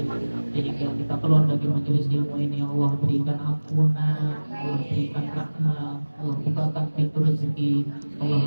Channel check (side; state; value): both; inverted; correlation -1.00